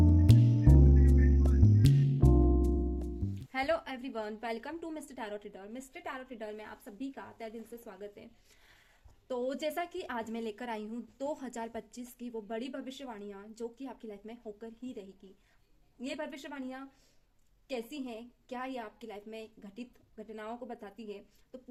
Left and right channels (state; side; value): identical; both; correlation 1.00